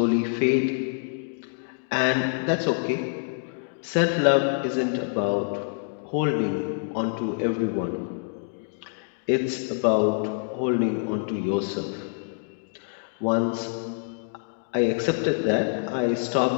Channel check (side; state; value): right; silent; 61 dB below the other